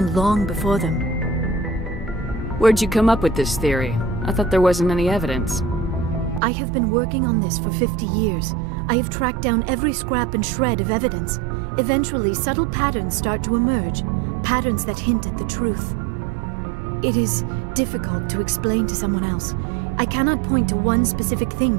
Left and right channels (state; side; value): drops out; left; at 6.4 s